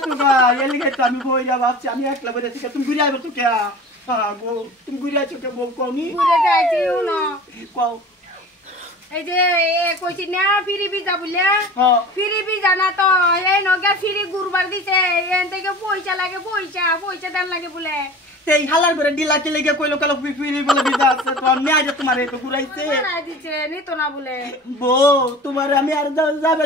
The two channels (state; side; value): normal; both; correlation 0.38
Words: গা, এলিগে তো আমি বইরা ভাবছি আমি একলা বইরা ঠিক তুমি ঘুরে আইবে তো কে, গো তুমি ঘুরে আইছো কে বউ কমি ঘুরে যাইছি না, কও এই যে কইছি না ফিরি বিজা বলে, হ্যাঁ ফিরি বিজা না তো এই নগে ফিরি গুরবার দিছে, এন থেকে পয়সা লাগে, পয়সা দেন লাগে বলে, এই হালার করে ডিলাকে লেগে কইলো কালো ফিরি বলে বিজা আছে তো আমি আজ তোমার একটু ঘুরাইছে মারাই দিছে নিত না বলে, বউ তোমার আমি আর যাবে